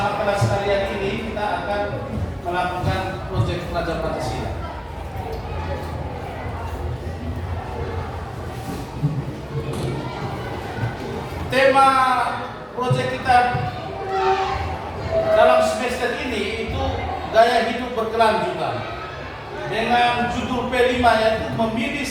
kelas kalian ini kita akan melakukan proyek Pelajar Pancasila. Tema proyek kita dalam semester ini itu gaya hidup berkelanjutan dengan judul P5 yaitu memilih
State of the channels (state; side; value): identical; both; correlation 1.00